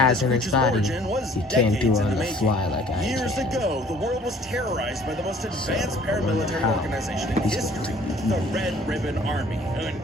this in his creature's body. origin was He can't do decades it in on the the making. fly like I Years can. ago, the world was terrorized by the most advanced I wonder paramilitary how organization in he's history, going to the Red Ribbon Army.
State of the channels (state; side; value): normal; both; correlation 0.54